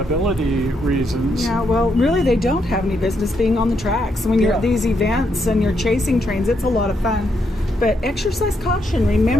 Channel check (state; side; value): normal; both; correlation 0.78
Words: reasons. Yeah, well, really they don't have any business being on the tracks. When you're at these events and you're chasing trains, it's a lot of fun. But exercise caution.